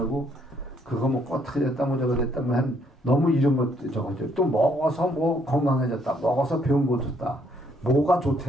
그거 뭐 어떻게 됐다 뭐 저거 됐다 뭐 한 너무 이런 것 저거죠. 또 먹어서 뭐 건강해졌다. 먹어서 병 고쳤다. 뭐가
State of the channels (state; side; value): normal; both; correlation 0.69